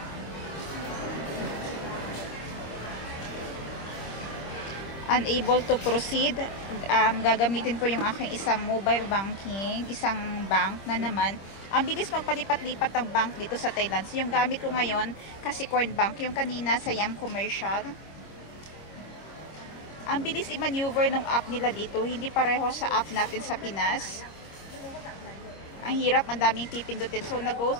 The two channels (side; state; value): right; late; 25 ms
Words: Unable to proceed. Gagamitin ko yung aking isang mobile banking, isang bank na naman. Ang bilis magpalipat-lipat ng bank dito sa Thailand. So, yung gamit ko ngayon, Kasikorn Bank. Yung kanina sa Yam Commercial. Ang bilis i-maneuver ng app nila dito. Hindi pareho sa app natin sa Pinas. Ang hirap, ang daming pipindutin. So, nag-go